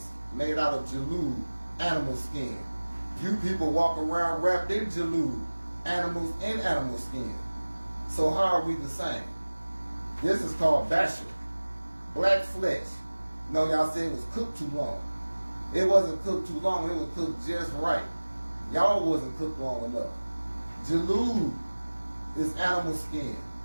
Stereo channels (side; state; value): both; inverted; correlation -1.00